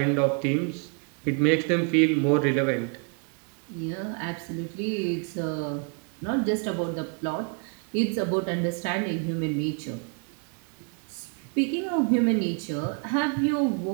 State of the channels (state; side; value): quieter; left; 39.9 dB